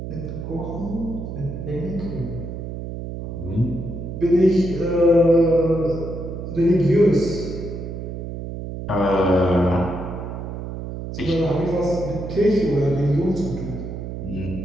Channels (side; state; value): right; noise; hum, 7 dB below the sound